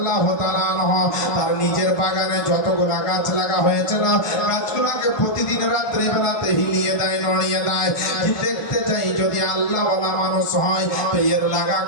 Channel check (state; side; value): late; right; 1.2 ms